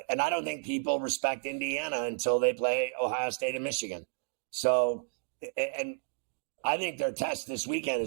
I don't think people respect Indiana until they play Ohio State and Michigan. So, and I think their test this weekend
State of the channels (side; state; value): left; silent; digital silence